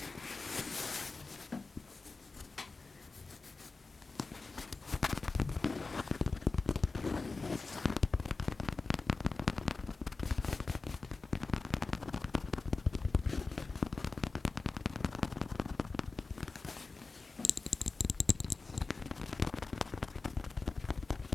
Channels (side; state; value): right; quieter; 3.9 dB